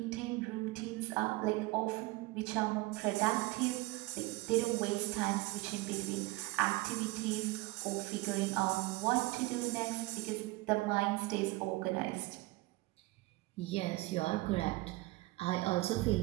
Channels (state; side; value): quieter; left; 21.3 dB